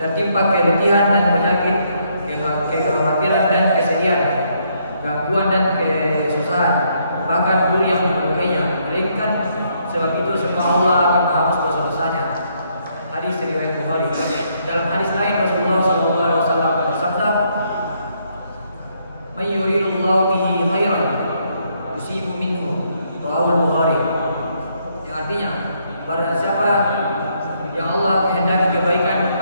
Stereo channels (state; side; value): inverted; both; correlation -0.72